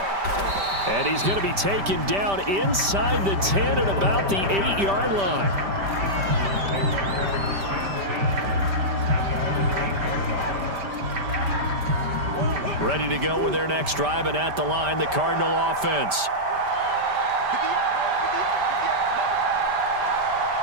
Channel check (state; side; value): late; left; 5.1 ms